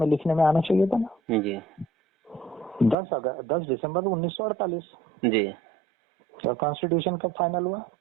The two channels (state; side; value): drops out; left; at 3.0 s